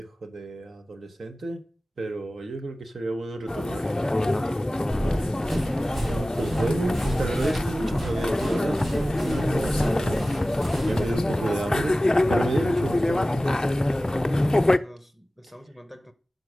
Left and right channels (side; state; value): both; normal; correlation 0.96